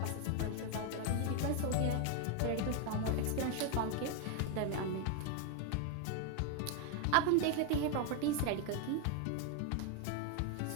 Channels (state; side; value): different; both; correlation 0.01